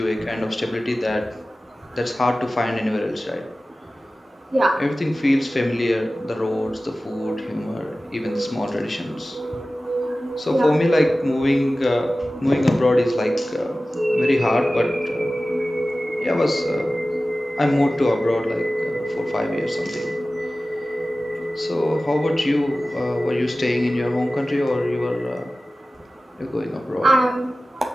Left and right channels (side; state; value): both; normal; correlation 0.96